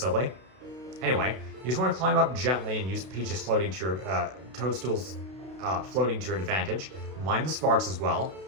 Anyway, you just want to climb up gently and use Peach's floating to your, toadstools floating to your advantage. Mind the sparks as well.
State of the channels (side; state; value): left; late; 32 ms